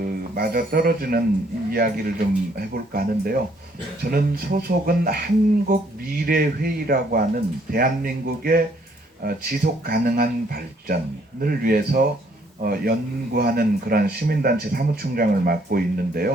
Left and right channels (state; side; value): normal; both; correlation 0.66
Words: 맞아 떨어지는 이야기를 좀 해볼까 하는데요. 저는 소속은 한국미래회의라고 하는 대한민국의 지속 가능한 발전을 위해서 연구하는 그런 시민단체 사무총장을 맡고